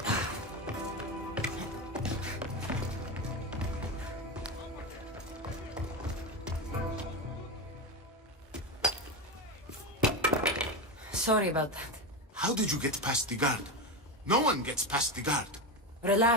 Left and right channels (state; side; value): normal; both; correlation 0.17